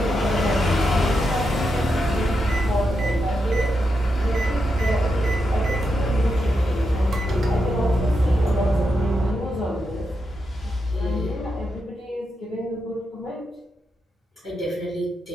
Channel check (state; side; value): normal; both; correlation 0.85